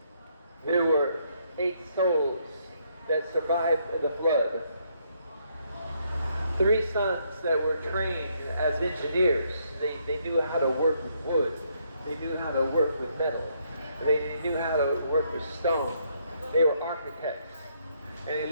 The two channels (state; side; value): inverted; both; correlation -0.72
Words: There were 8 souls that survived the flood. 3 sons that were trained as engineers. They knew how to work with wood. They knew how to work with metal. They knew how to work with stone. They were architects. And they